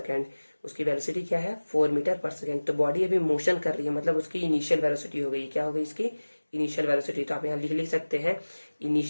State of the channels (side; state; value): both; inverted; correlation -1.00